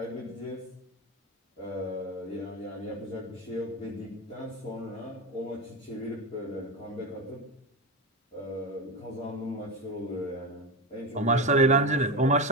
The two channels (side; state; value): both; normal; correlation 0.17